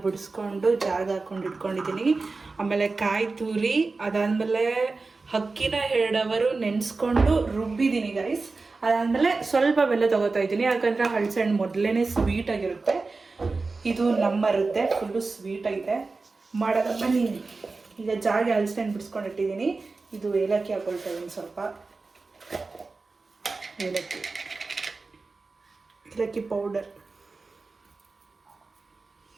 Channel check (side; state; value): left; quieter; 3.9 dB